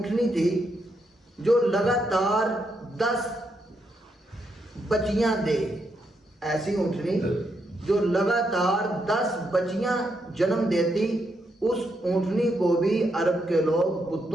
تھی جو لگاتار 10 بچیاں دے، ایسی اونٹنی جو لگاتار 10 بچیاں جنم دیتی، اس اونٹنی کو بھی عرب کے لوگ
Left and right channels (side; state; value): both; normal; correlation 0.80